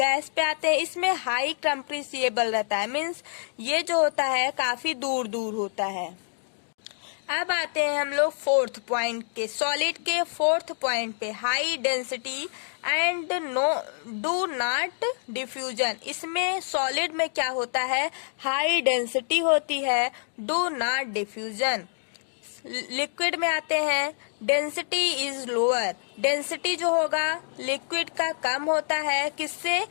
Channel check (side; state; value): right; silent; digital silence